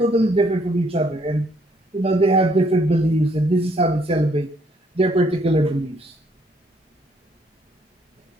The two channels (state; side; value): normal; both; correlation 0.67